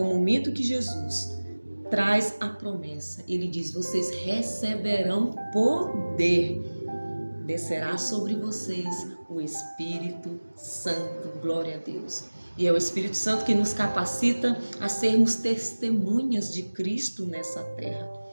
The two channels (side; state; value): both; inverted; correlation -1.00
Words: momento que Jesus traz a promessa. Ele diz: vocês receberão poder. Descerá sobre vocês o Espírito Santo, glória a Deus. E é o Espírito Santo que nos capacita a sermos testemunhas de Cristo nessa terra,